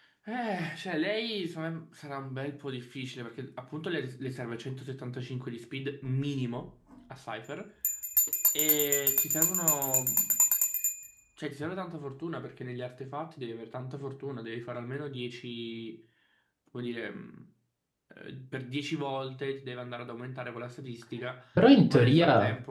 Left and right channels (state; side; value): identical; both; correlation 1.00